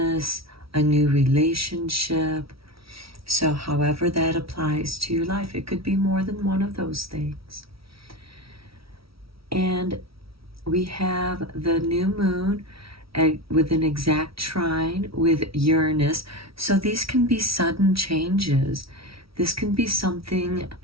a new relationship. So however that applies to your life, it could be more than one of those things. And we have the new moon with an exact trine with Uranus. So these can be sudden changes. This can be something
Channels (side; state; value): left; late; 0.75 ms